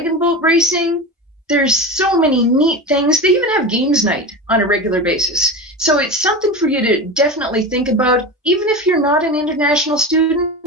boat racing. There's so many neat things. They even have games night on a regular basis. So it's something for you to definitely think about. Even if you're not an international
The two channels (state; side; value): normal; both; correlation 0.25